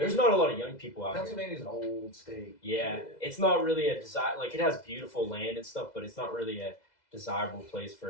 not a lot of young people out here. Pennsylvania's an old state. Yeah, it's not really a desire. Like it has beautiful land and stuff, but it's not really a desirable place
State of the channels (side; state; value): right; late; 2.0 ms